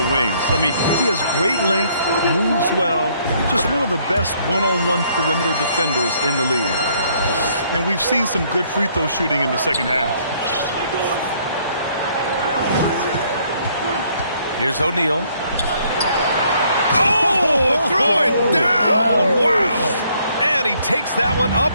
wings. I mean, he has great length, moves well, just one of the best one-on-one perimeter defenders in the league. And we've seen some good free throw shooting in the second half. Here's O'Neal. Oh, throw it down. Wow. And he takes that one up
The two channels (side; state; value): both; inverted; correlation -0.66